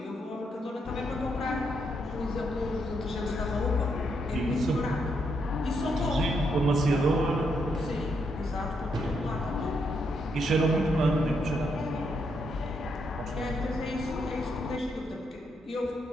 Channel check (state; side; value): normal; both; correlation 0.78